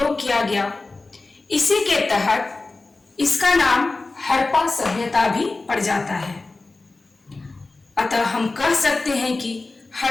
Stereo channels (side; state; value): right; quieter; 3.5 dB